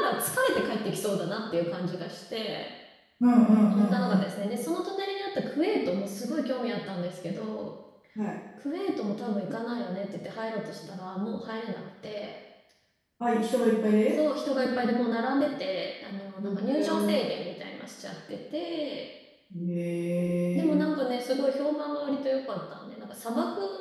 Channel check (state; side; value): identical; both; correlation 1.00